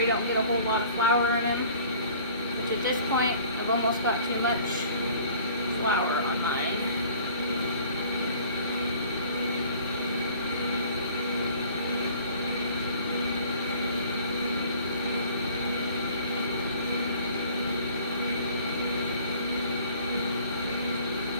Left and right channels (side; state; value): both; inverted; correlation -0.51